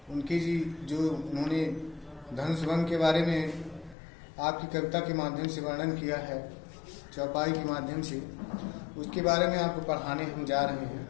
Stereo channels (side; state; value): right; drops out; at 4.0 s